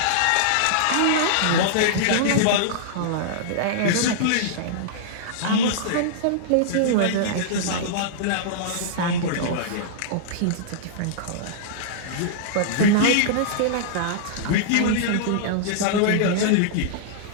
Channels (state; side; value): different; both; correlation -0.02